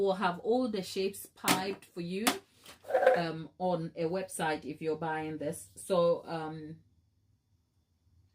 have all the shapes piped for you on a website if you're buying this. So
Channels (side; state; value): both; identical; correlation 1.00